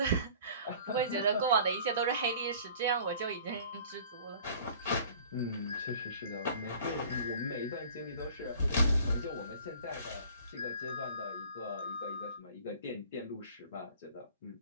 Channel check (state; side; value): inverted; both; correlation -0.47